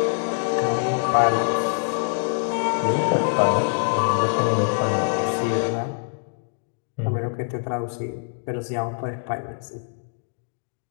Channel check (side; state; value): right; silent; digital silence